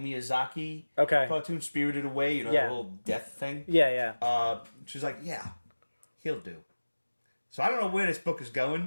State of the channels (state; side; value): inverted; both; correlation -1.00